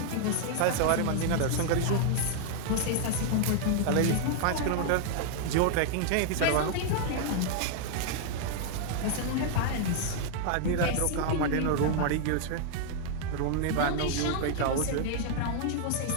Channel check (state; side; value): different; both; correlation 0.00